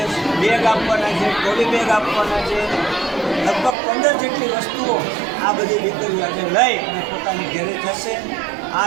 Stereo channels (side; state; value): left; drops out; at 3.8 s